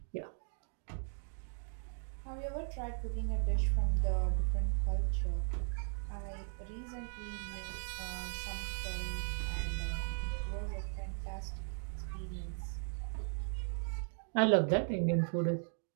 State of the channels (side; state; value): left; silent; 53 dB below the other